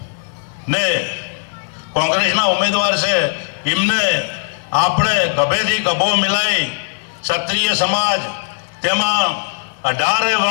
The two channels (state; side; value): silent; right; 58 dB below the other